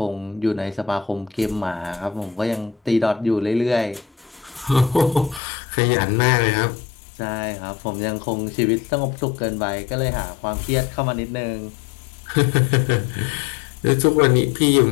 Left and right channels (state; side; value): drops out; right; at 5.4 s